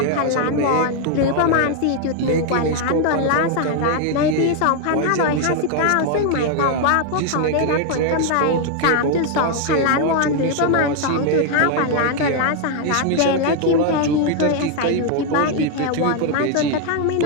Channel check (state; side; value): different; both; correlation 0.00